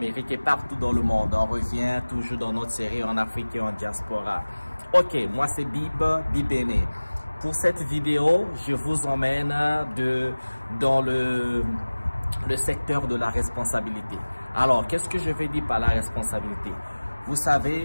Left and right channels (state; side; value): inverted; both; correlation -1.00